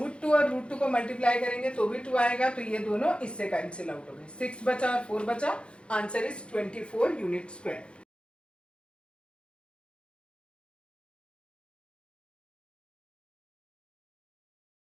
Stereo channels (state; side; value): late; right; 0.057 ms